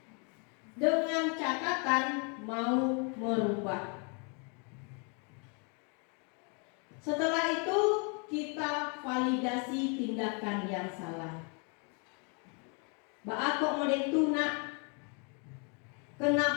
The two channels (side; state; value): right; quieter; 36.4 dB